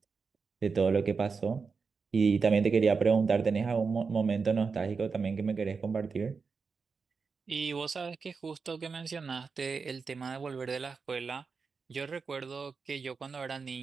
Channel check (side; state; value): left; quieter; 5.0 dB